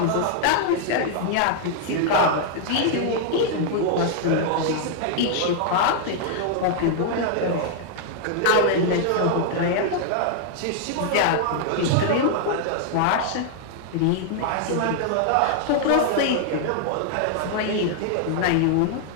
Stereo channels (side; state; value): both; different; correlation 0.00